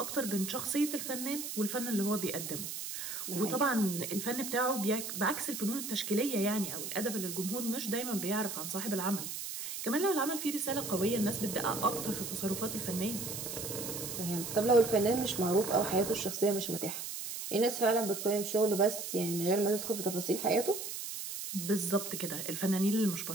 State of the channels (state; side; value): noise; right; hiss, 6 dB below the sound